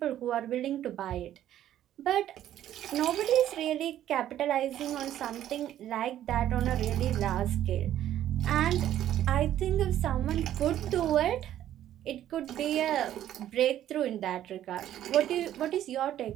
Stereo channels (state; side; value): quieter; left; 11.9 dB